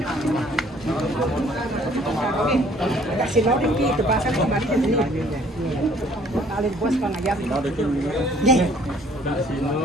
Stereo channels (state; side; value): normal; both; correlation 0.58